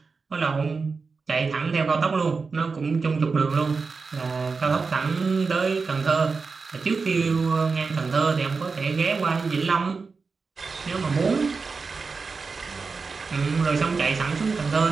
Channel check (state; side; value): quieter; left; 4.6 dB